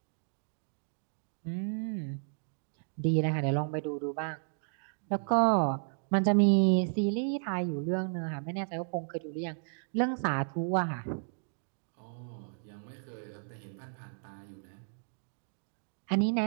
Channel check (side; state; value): left; silent; digital silence